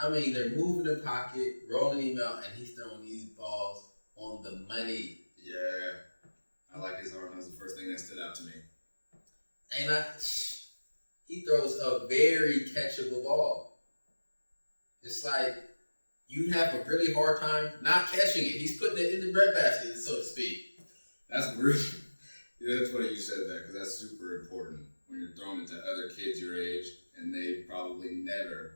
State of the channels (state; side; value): inverted; both; correlation -1.00